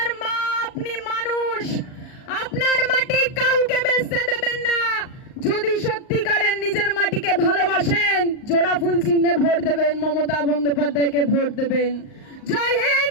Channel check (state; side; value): late; right; 38 ms